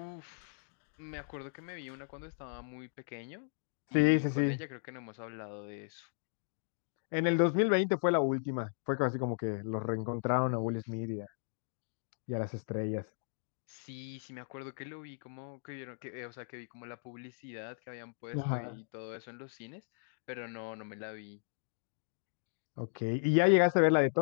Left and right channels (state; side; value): silent; right; digital silence